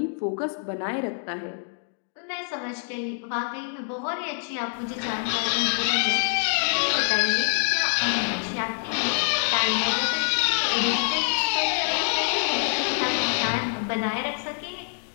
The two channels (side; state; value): right; silent; 61 dB below the other